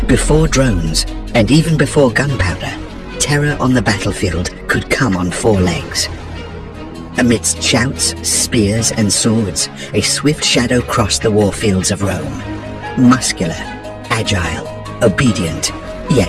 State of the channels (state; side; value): identical; both; correlation 1.00